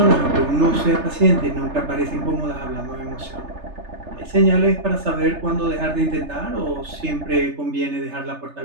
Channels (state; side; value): late; left; 3.3 ms